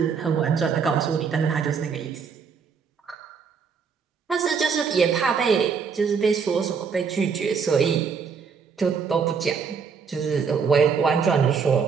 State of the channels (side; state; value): left; quieter; 6.0 dB